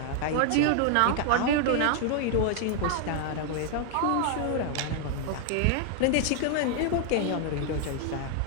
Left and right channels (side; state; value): both; different; correlation 0.00